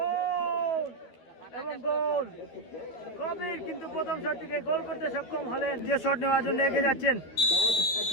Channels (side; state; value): right; late; 12 ms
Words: এবং গোল। কবির কিন্তু প্রথম শট থেকে গোল করতে সক্ষম হলেন। যে শট নেওয়ার জন্য এগিয়ে যাচ্ছেন